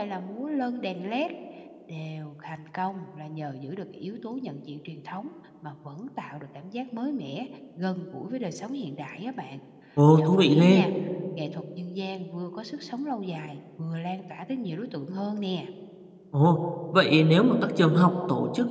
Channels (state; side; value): identical; both; correlation 1.00